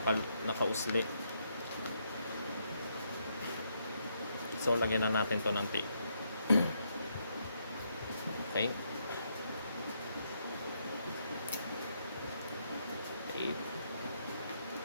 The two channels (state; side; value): inverted; both; correlation -0.77